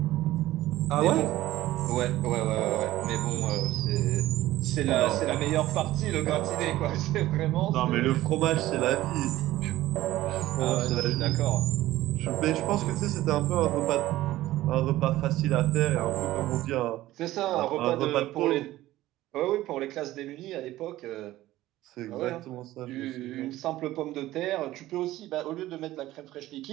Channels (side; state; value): left; quieter; 15.7 dB